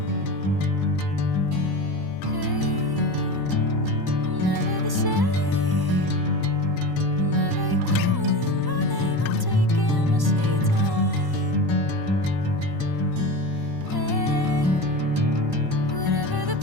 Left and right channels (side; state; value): left; late; 1.1 ms